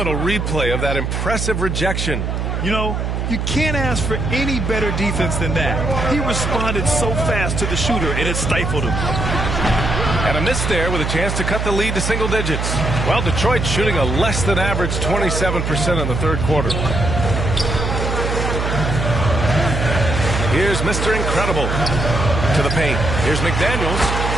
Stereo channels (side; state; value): right; noise; hum, 1 dB below the sound